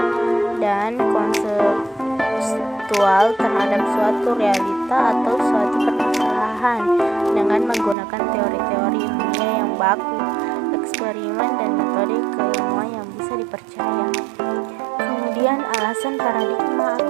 dan konseptual terhadap suatu realita atau suatu permasalahan dengan menggunakan teori-teori ilmiah yang baku, eksperimen, dan metode keilmuan yang bisa dipercaya. Kemudian alasan paradigma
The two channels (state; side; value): drops out; left; at 8.0 s